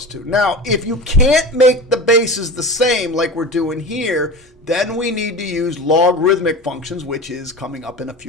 2. Now, if you can't make the bases the same like we're doing here, then we need to use logarithmic functions, which is coming up in a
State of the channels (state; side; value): normal; both; correlation 0.31